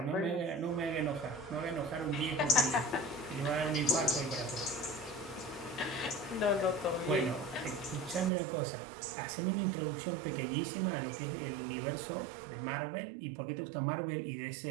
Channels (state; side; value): drops out; left; at 8.3 s